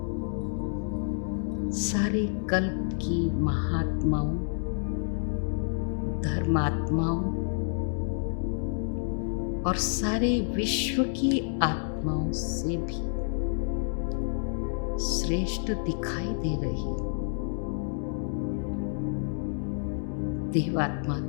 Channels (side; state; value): right; silent; digital silence